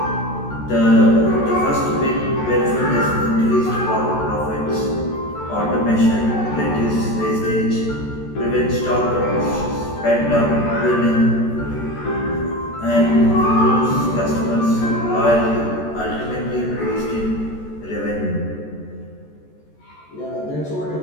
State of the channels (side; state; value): right; late; 14 ms